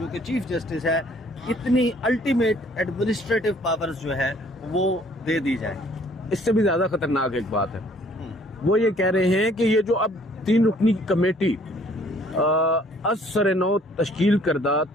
کہ چیف جسٹس ہے، اتنی الٹیمیٹ ایڈمنسٹریٹو پاورز جو ہے وہ دے دی جائیں. اس سے بھی زیادہ خطرناک ایک بات ہے، وہ یہ کہہ رہے ہیں کہ یہ جو اب 3 رکنی کمیٹی از سر نو تشکیل کردہ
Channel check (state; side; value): normal; both; correlation 0.59